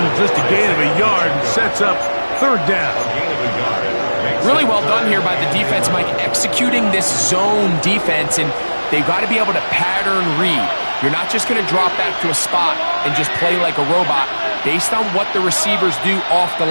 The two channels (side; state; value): both; inverted; correlation -1.00